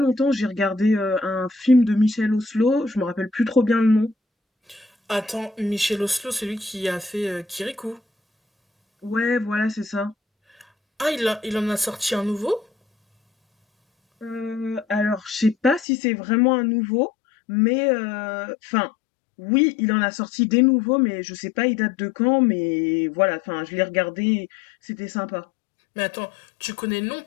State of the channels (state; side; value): drops out; right; at 15.9 s